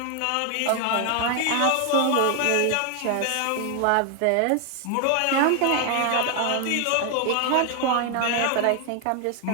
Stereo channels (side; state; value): both; different; correlation 0.01